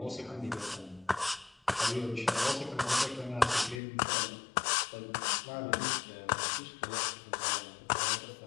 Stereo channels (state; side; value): drops out; right; at 3.8 s